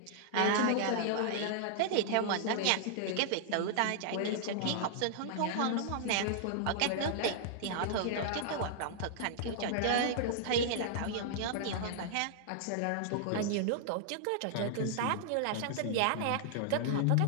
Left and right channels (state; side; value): different; both; correlation -0.01